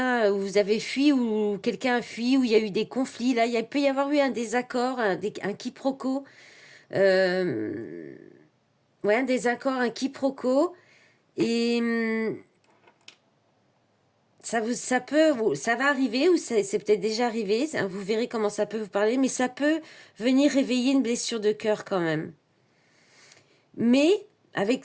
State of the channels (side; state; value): both; identical; correlation 1.00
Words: vous avez fui ou quelqu'un a fui ou il y a eu des conflits. Là, il peut y avoir eu un désaccord, un quiproquo. Euh, ouais, un désaccord, un quiproquo. Et ça va arriver ou c'est peut-être déjà arrivé. Vous verrez comment ça peut vous parler, mais ça peut venir réveiller une blessure de cœur quand même. Mais